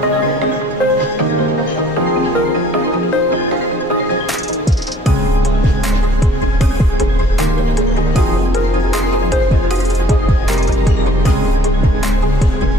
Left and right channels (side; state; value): both; normal; correlation 0.57